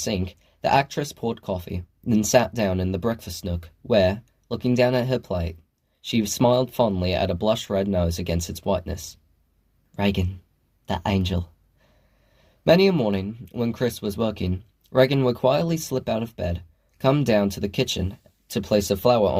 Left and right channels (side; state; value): both; identical; correlation 1.00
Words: the actress poured coffee, then sat down in the breakfast nook, where, looking down at her plate, she smiled fondly at a blush-red nose against its whiteness. Reagan, that angel. Many a morning, when Chris was working, Reagan would quietly slip out of bed, come down to the kitchen to place a flower